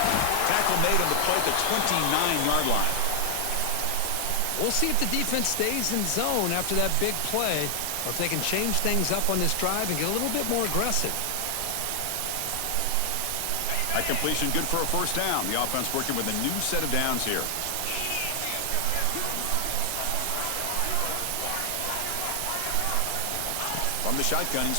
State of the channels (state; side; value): different; both; correlation 0.00